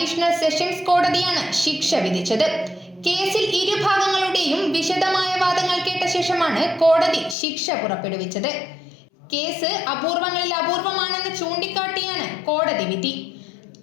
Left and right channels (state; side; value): drops out; right; at 7.4 s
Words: സെഷൻസ് കോടതിയാണ് ശിക്ഷ വിധിച്ചത്. കേസിൽ ഇരുഭാഗങ്ങളുടെയും വിശദമായ വാദങ്ങൾ കേട്ട ശേഷമാണ് കോടതി ശിക്ഷ പുറപ്പെടുവിച്ചത്. കേസ് അപൂർവങ്ങളിൽ അപൂർവമാണെന്ന് ചൂണ്ടിക്കാട്ടിയാണ് കോടതി വിധി.